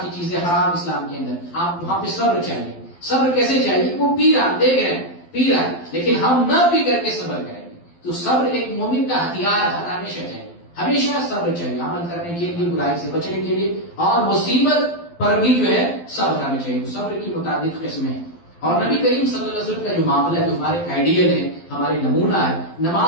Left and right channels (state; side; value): late; right; 12 ms